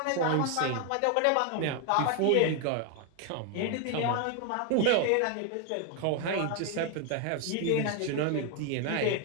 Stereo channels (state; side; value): different; both; correlation 0.01